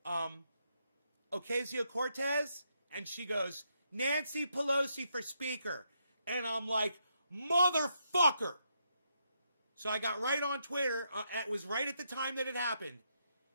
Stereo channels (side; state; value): both; inverted; correlation -0.79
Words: Ocasio-Cortez? And she goes, Nancy Pelosi for speaker. And I'm like, motherfucker! So I got right on Twitter. It was right at the time that it happened.